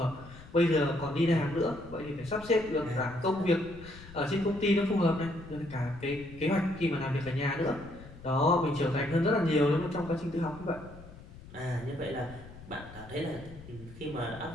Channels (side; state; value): left; noise; rumble, 17 dB below the sound